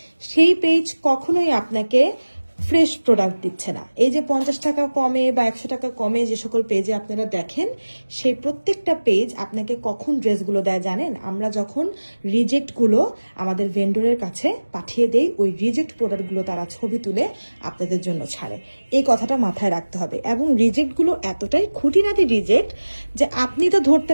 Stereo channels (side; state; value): both; inverted; correlation -1.00